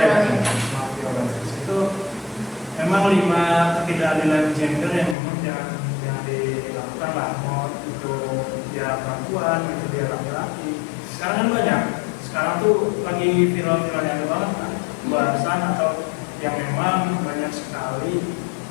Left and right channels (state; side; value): drops out; right; at 5.2 s